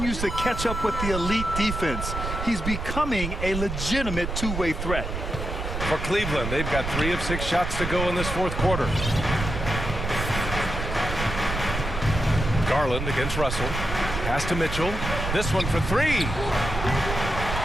to catch up with the elite defense. He's becoming a legitimate two-way threat. For Cleveland, they've got 3 of 6 shots to go in this 4th quarter. Garland against Russell. Pass to Mitchell. This one for 3.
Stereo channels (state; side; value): noise; right; rumble, 4 dB below the sound